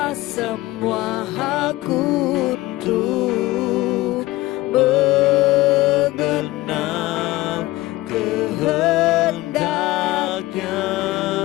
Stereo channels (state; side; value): quieter; right; 18.5 dB